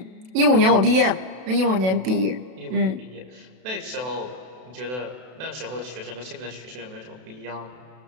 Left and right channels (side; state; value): left; late; 32 ms